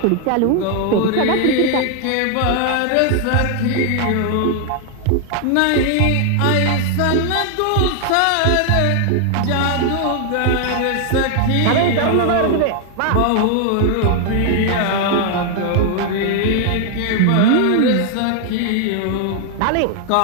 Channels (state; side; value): different; both; correlation 0.00